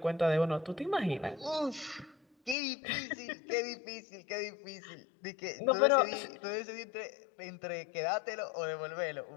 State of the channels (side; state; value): right; drops out; at 2.6 s